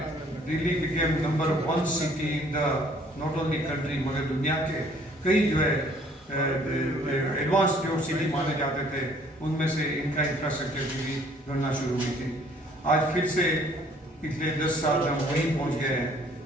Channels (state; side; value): normal; both; correlation 0.59